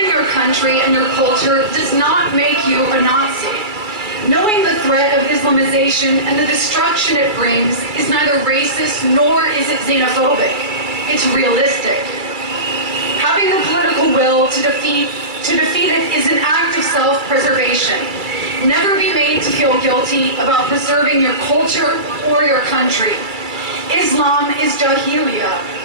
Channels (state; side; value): late; left; 2.3 ms